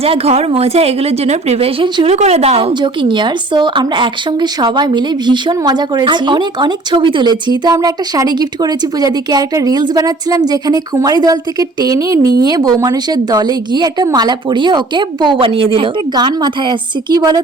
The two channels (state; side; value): quieter; left; 3.0 dB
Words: ঘর মোছা এগুলোর জন্য প্রিপারেশন শুরু করে দাও। জোকিং ইয়ার। সো আমরা একসঙ্গে সবাই মিলে ভীষণ মজা করেছি, অনেক অনেক ছবি তুলেছি। তো আমরা একটা শাড়ি গিফট করেছি পূজাদিকে, আর একটা রিলস বানাচ্ছিলাম যেখানে কুমারী দল থেকে টেনে নিয়ে বউ মানুষের দলে গিয়ে একটা মালা পরিয়ে ওকে বউ বানিয়ে দিল। একটা গান মাথায় আসছে, কি